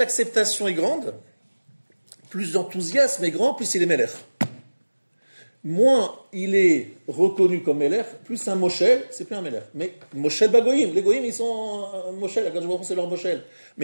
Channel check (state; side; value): inverted; both; correlation -1.00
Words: est grande, plus l'enthousiasme est grand, plus il est melech. Moins il est reconnu comme melech, plus un moshel, c'est plus un melech. Mais moshel bagoyim, les goyim ils sont moshel, c'est leur moshel.